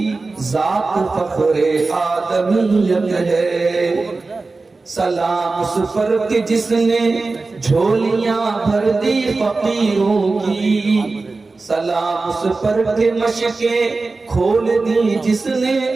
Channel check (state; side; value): quieter; left; 3.7 dB